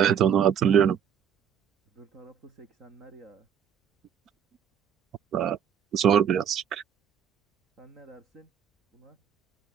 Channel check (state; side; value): quieter; left; 8.5 dB